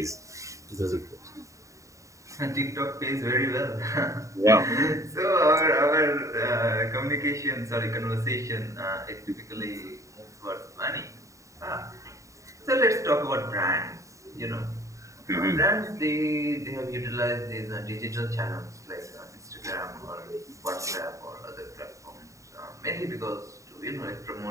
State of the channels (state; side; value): late; left; 0.15 ms